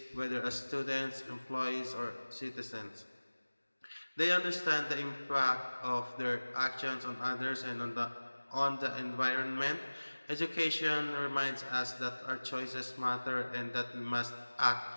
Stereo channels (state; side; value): inverted; both; correlation -1.00